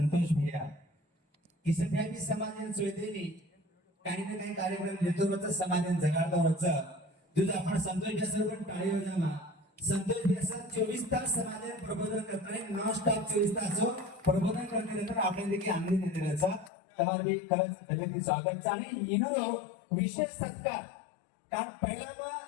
भैया किसन भैया भी समाजन सोयदेनी काही ना काही कार्यक्रम घेतो रोज समाजन जगाडतो रोज तुझं आपण संतोष भैया सर पण टाळी वाजवा संतोष भैया सर 24 तास समाजन प्रबोधन करताय नॉन स्टॉप 24 तास प्रबोधन करते तर आपण देखील आनंद देते त्याचा तुम्हाला भी खरंच दिलगी स्वागत आणि इनो विशेष सत्कार कारण पहिला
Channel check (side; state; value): right; drops out; at 16.7 s